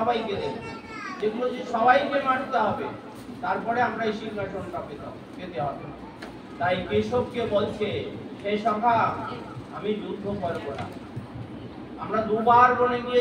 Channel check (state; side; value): identical; both; correlation 1.00